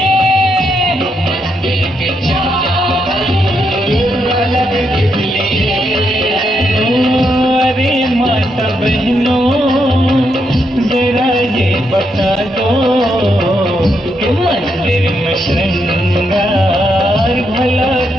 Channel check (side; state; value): both; normal; correlation 0.80